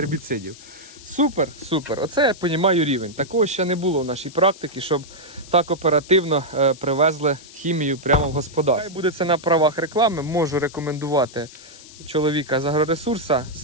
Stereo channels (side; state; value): left; noise; hiss, 19 dB below the sound